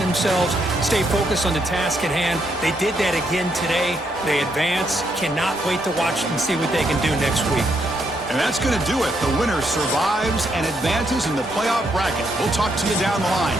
themselves, stay focused on the task at hand. They did that again today. They advance. Cannot wait to watch and see what they can do next week. And that's going to do it. The winner survives and advances in the playoff bracket. We'll talk to you down the line.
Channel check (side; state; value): both; normal; correlation 0.76